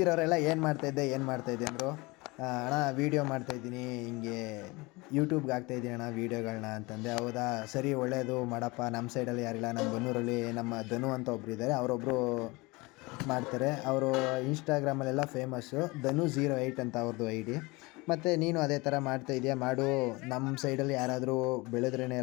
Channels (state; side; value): quieter; right; 24.2 dB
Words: ಏನು ಮಾಡ್ತಾಯಿದ್ದೆ ಅಂದರು. ಅಣ್ಣ ವೀಡಿಯೋ ಮಾಡ್ತಾಯಿದ್ದೀನಿ, ಹಿಂಗೆ ಯೂಟ್ಯೂಬ್ಗೆ ಹಾಕ್ತಾಯಿದ್ದೀನಿ ಅಣ್ಣ ವೀಡಿಯೋಗಳನ್ನ ಅಂತಂದೆ. ಹೌದಾ, ಸರಿ ಒಳ್ಳೆಯದು ಮಾಡಪ್ಪ. ನಮ್ಮ ಸೈಡಲ್ಲಿ ಯಾರಿಲ್ಲ, ನಮ್ಮ ಬನ್ನೂರಲ್ಲಿ ನಮ್ಮ ಧನು ಅಂತ ಒಬ್ಬರು ಇದ್ದಾರೆ, ಅವರೊಬ್ಬರು ಮಾಡ್ತಾರೆ. ಅವರು ಇನ್ಸ್ಟಾಗ್ರಾಮಲ್ಲೆಲ್ಲ ಫೇಮಸ್ಸು, ಧನು08 ಅಂತ ಅವ್ರದ್ದು ID. ಮತ್ತು ನೀನು ಅದೇ ಥರ ಮಾಡ್ತಾಯಿದ್ಯಾ, ಮಾಡು, ನಮ್ಮ ಸೈಡಲ್ಲಿ ಯಾರಾದರೂ ಬೆಳೆದ್ರೇ